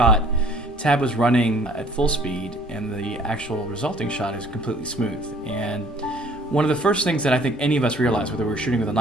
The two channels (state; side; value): normal; both; correlation 0.56